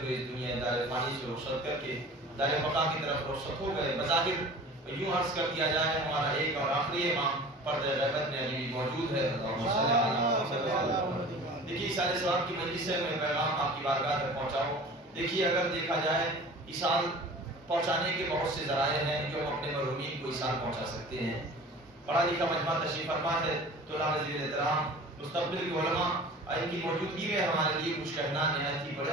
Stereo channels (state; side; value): normal; both; correlation 0.41